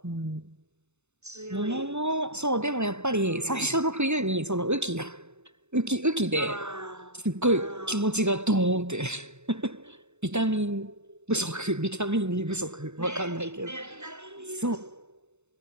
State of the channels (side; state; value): left; late; 0.82 ms